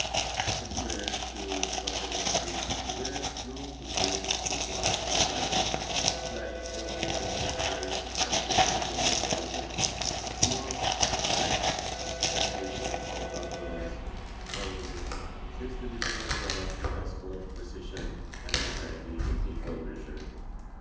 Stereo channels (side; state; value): both; identical; correlation 1.00